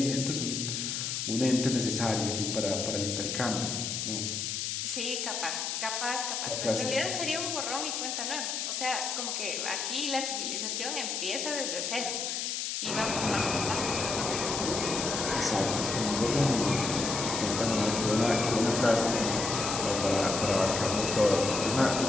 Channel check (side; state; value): left; noise; hiss, 2 dB below the sound